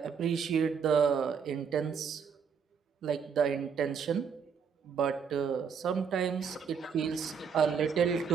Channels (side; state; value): left; quieter; 6.5 dB